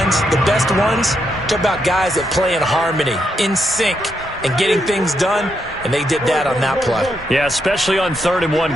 the best ones, talk about guys that play in harmony, in sync, and getting things done, and they did that on that play. Yeah, especially on 3rd and 1.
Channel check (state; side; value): normal; both; correlation 0.80